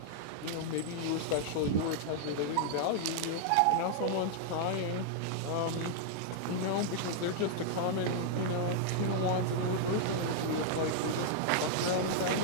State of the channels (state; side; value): different; both; correlation -0.01